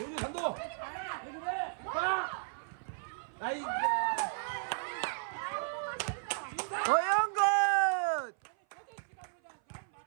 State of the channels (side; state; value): left; silent; 55 dB below the other